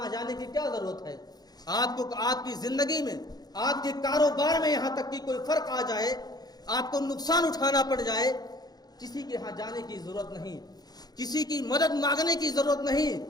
آ جانے کی کیا ضرورت ہے؟ آپ کو آپ کی زندگی میں، آپ کے کاروبار میں یہاں تک کہ کوئی فرق آ جائے، آپ کو نقصان اٹھانا پڑ جائے، کسی کے یہاں جانے کی ضرورت نہیں، کسی کی مدد مانگنے کی ضرورت نہیں،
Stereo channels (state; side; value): late; right; 0.19 ms